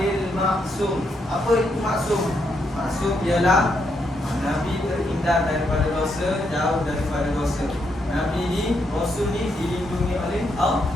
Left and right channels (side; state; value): both; normal; correlation 0.78